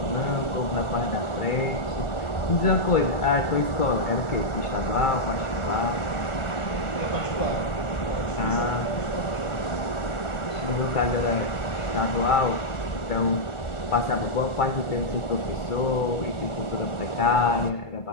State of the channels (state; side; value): late; right; 1.4 ms